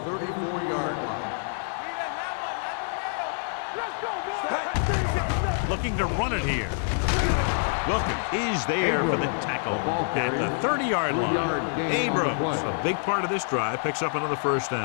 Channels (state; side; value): silent; right; digital silence